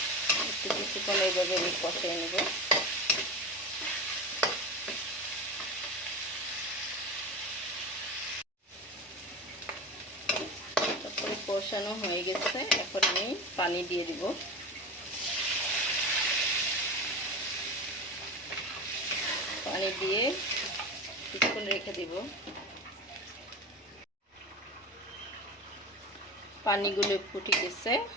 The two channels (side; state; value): both; normal; correlation 0.27